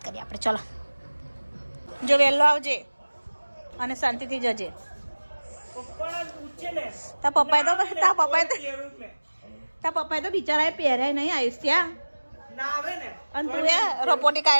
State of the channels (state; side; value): inverted; both; correlation -1.00